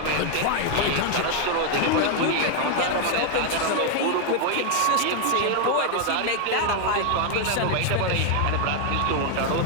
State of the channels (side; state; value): both; different; correlation 0.00